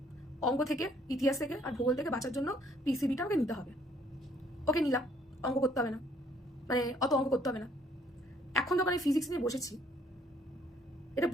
অঙ্ক থেকে, ইতিহাস থেকে আর ভূগোল থেকে বাঁচার জন্য পিসিবিটা আমাকে নিতে হবে। ওকে নিলাম, অঙ্ক করতে হবে না, মানে অত অঙ্ক করতে হবে না। এখন যখন আমি ফিজিক্স নিয়ে বসেছি, এটা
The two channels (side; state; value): both; normal; correlation 0.64